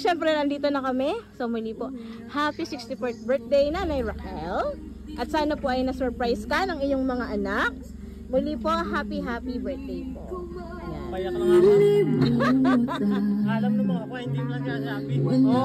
nandito na kami. So muli po, happy 64th birthday Nanay Raquel. At sana po ay na-surprise ka ng iyong mga anak. Muli po, happy birthday po. Ayan. Payak lang ako. Alam naman ako, hindi mo lang sasabi.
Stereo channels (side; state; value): both; identical; correlation 1.00